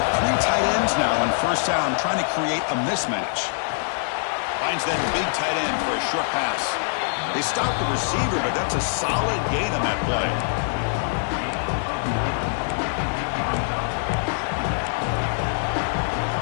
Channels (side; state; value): right; silent; digital silence